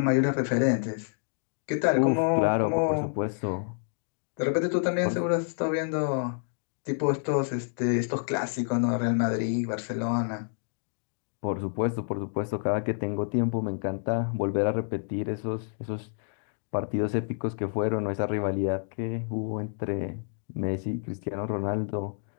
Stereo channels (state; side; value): silent; right; digital silence